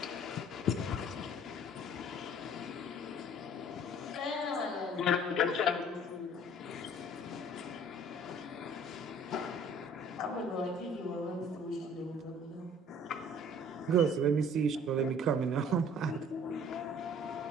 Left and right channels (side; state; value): both; normal; correlation 0.52